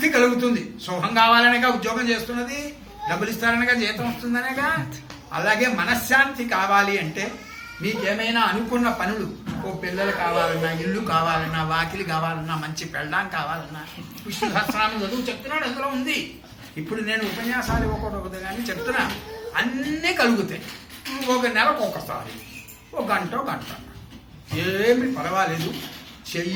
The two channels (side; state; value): both; identical; correlation 1.00